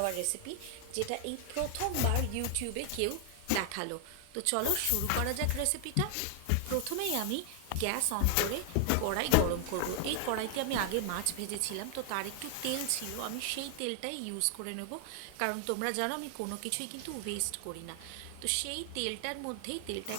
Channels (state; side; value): different; both; correlation 0.00